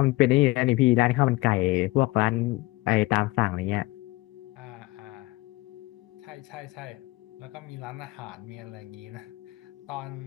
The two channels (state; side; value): quieter; right; 20.8 dB